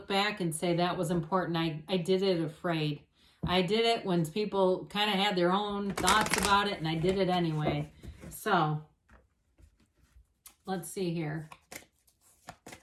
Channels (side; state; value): both; identical; correlation 1.00